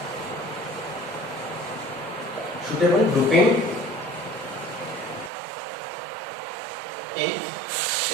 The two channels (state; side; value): drops out; left; at 5.3 s